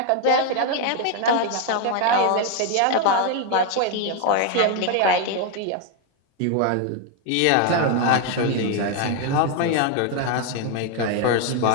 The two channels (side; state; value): both; different; correlation 0.01